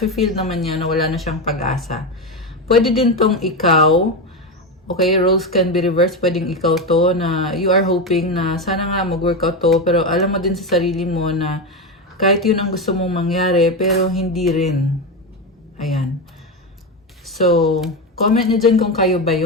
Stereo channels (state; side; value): normal; both; correlation 0.14